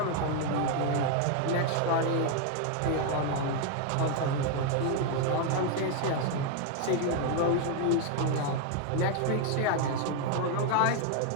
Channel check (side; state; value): both; different; correlation 0.00